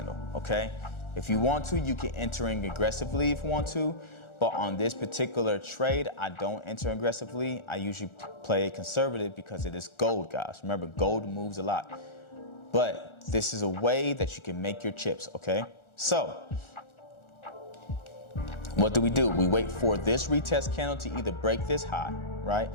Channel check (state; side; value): late; right; 1.4 ms